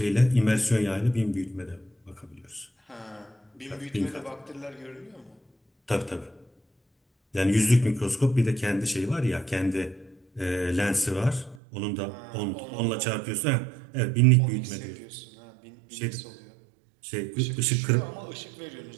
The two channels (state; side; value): drops out; left; at 11.6 s